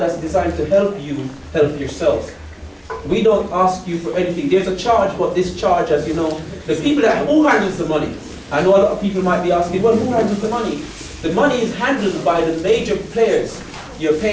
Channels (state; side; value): identical; both; correlation 1.00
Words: designed to help you help yourself. We don't ask you for anything. There's a charge, but this charge, as you know, the people who handles the money? I know a lot of people might be asking, well, who handles the money? The money is handled by the major players, your